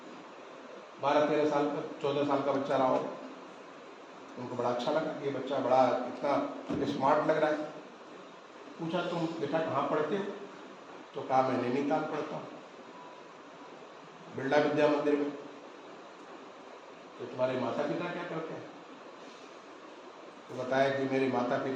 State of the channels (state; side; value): identical; both; correlation 1.00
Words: 12-13 साल का, 14 साल का बच्चा रहा हो। उनको बड़ा अच्छा लगा कि ये बच्चा बड़ा इतना स्मार्ट लग रहा है। पूछा, तुम बेटा कहाँ पढ़ते हो? तो कहा, मैं नैनीताल पढ़ता हूँ, बिरला विद्या मंदिर में। तो तुम्हारे माता पिता क्या करते हैं? तो बताया कि मेरे माता